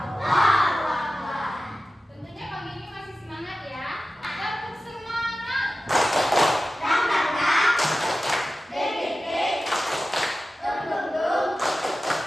Tentunya pagi ini masih semangat ya. Tetap semangat.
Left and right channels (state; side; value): normal; both; correlation 0.94